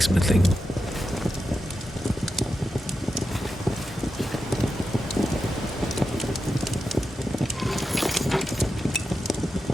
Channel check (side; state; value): both; normal; correlation 0.89